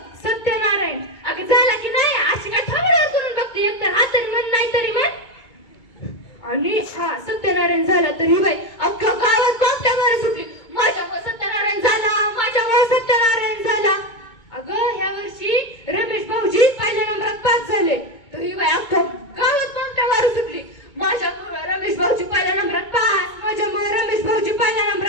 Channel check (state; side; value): late; right; 2.2 ms